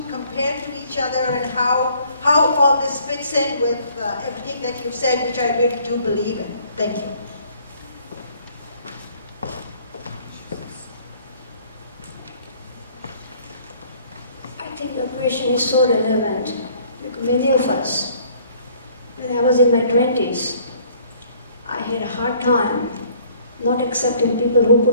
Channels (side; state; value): both; inverted; correlation -0.59